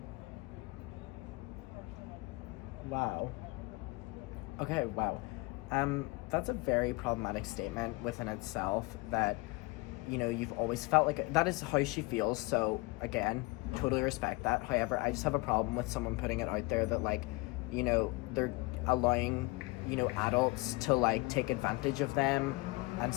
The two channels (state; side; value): quieter; right; 24.1 dB